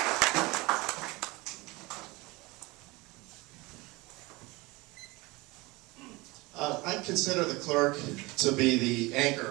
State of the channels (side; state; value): left; quieter; 23.1 dB